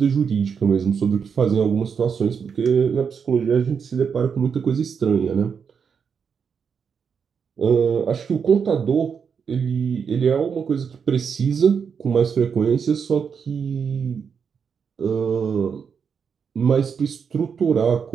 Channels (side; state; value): left; quieter; 6.5 dB